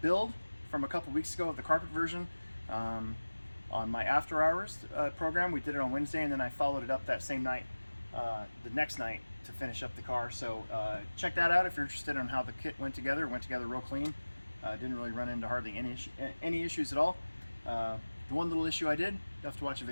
build from a couple weeks ago of the carpet version on my after hours program. We did it on Wednesday, and then I followed it up that same night, the next night, to finish up the car. So check that out if you're interested in how the kit went together. It went together real clean. Didn't really run into hardly any issues at all. The one little issue I did, you have to watch a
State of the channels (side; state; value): both; inverted; correlation -1.00